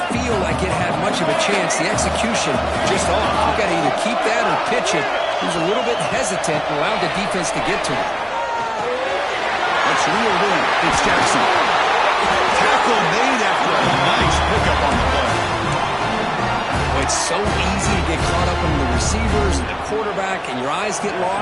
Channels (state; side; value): identical; both; correlation 1.00